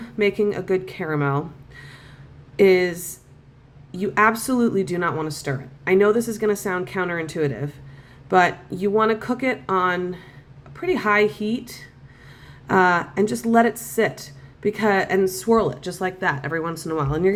making a good caramel is you absolutely do not want to stir it. I know this is going to sound counterintuitive, but you want to cook it on a pretty high heat and just let it sit and swirl it just like that every once in a while. And you're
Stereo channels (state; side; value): identical; both; correlation 1.00